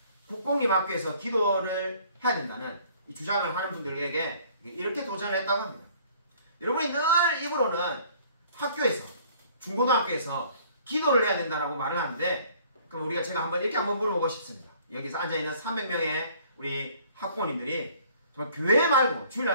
국공립학교에서 기도를 해야 된다는 이 주장을 하는 분들에게 이렇게 도전을 했다고 합니다. 여러분이 늘 입으로는 학교에서 중고등학교에서 기도를 해야 된다라고 말을 하는데 그럼 제가 이렇게 한번 물어보고 싶습니다. 여기서 앉아있는 300명의 우리 학부모님들이 정말 교회 말고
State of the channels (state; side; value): inverted; both; correlation -0.57